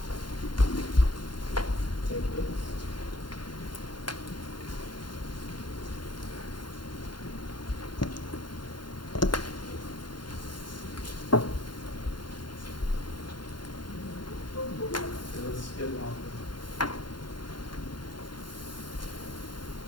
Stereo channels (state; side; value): late; right; 0.71 ms